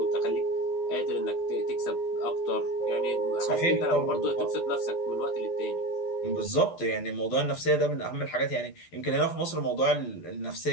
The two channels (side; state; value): right; late; 12 ms